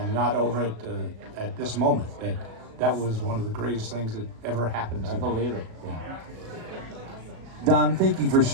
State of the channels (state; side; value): late; left; 37 ms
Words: not over it at this moment. That was one of the greatest things that ever happened to me. I believe it. Yeah. Don, thank you for